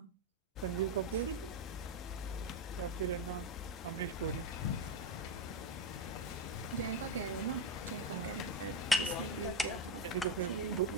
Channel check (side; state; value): both; normal; correlation 0.12